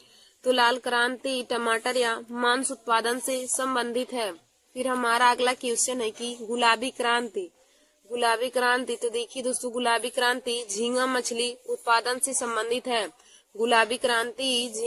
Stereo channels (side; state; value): both; identical; correlation 1.00